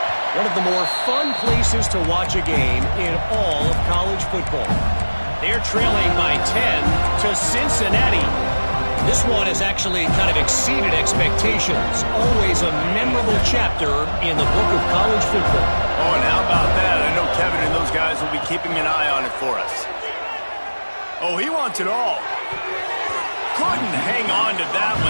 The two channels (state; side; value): inverted; both; correlation -1.00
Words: one of the more fun places to watch a game in all of college football. They're trailing by 10 to Cincinnati. This one has actually kind of exceeded expectations. Always a memorable chapter in the book of college football. Oh, and how about that? I know Kevin and those guys will be keeping an eye on it for us. Oh, he wants it all. Couldn't hang on to that